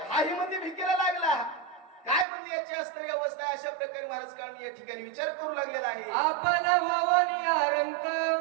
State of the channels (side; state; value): left; drops out; at 2.2 s